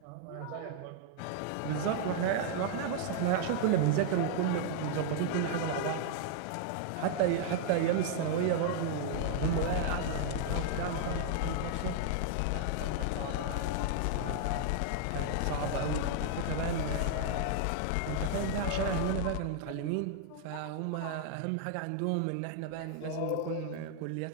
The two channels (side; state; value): both; different; correlation 0.00